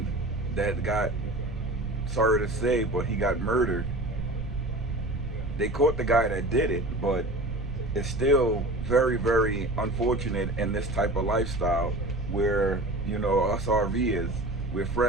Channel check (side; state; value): right; noise; rumble, 8 dB below the sound